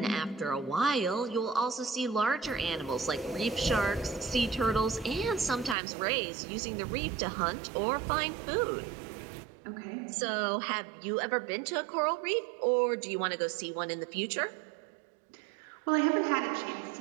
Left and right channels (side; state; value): left; drops out; at 5.8 s